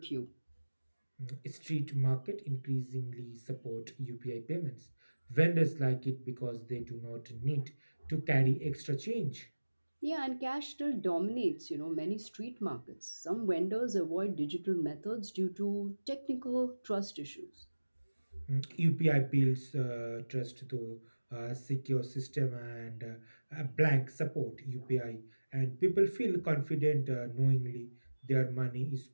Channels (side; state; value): both; inverted; correlation -1.00